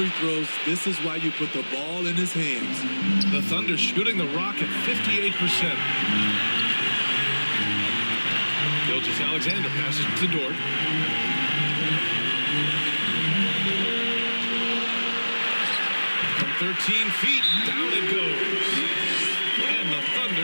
throws. This is why you put the ball in his hands. The Thunder shooting the rock at 58%. Gilgeous-Alexander passes to Dort. From 13 feet, down it goes. And the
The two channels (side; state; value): both; inverted; correlation -1.00